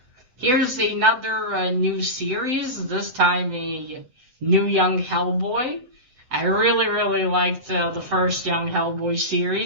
here's another new series, this time a new Young Hellboy. I really liked the first Young Hellboy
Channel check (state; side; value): late; left; 7.9 ms